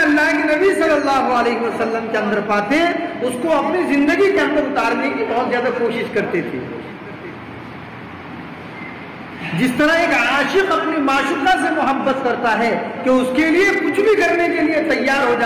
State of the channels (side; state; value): both; identical; correlation 1.00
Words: کے نبی صلی اللہ علیہ وسلم کے اندر پاتے اس کو اپنی زندگی کے اندر اتارنے کی بہت زیادہ کوشش کرتے تھے. جس طرح ایک عاشق اپنی معشوقہ سے محبت کرتا ہے کہ اس کے لیے کچھ بھی کرنے کے لیے تیار ہو